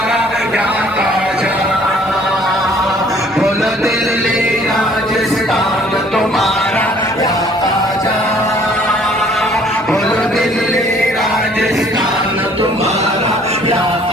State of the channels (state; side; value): normal; both; correlation 0.58